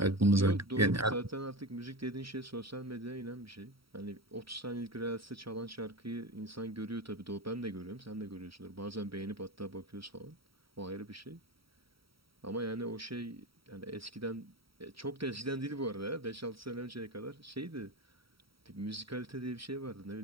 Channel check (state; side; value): late; left; 0.75 ms